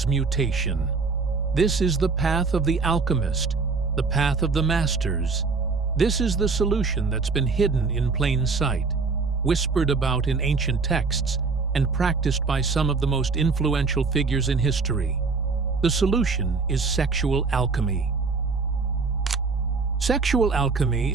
This is the path of the alchemist, the path of the masters. This is the solution that's been hidden in plain sight, whispered about in ancient texts, and practiced by some of the most influential figures in history. The solution is sexual alchemy. Sexual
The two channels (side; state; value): left; quieter; 4.5 dB